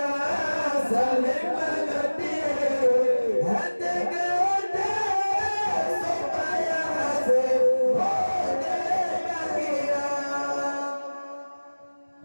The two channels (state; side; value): inverted; both; correlation -1.00